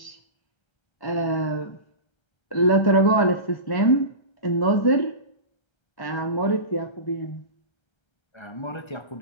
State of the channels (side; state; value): right; late; 1.3 ms